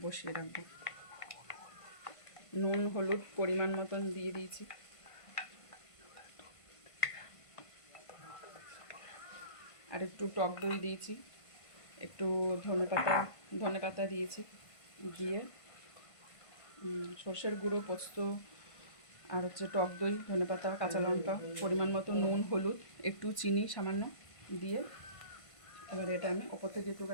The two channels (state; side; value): late; right; 1.5 ms